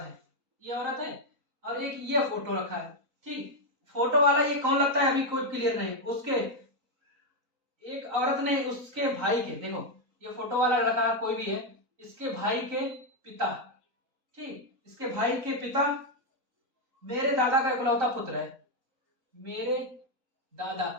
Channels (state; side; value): late; left; 4.1 ms